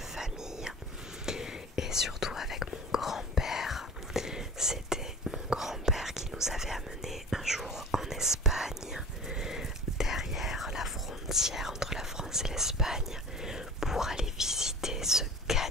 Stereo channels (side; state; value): both; normal; correlation 0.38